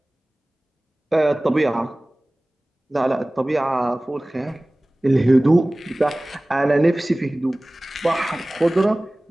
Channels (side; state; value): both; normal; correlation 0.98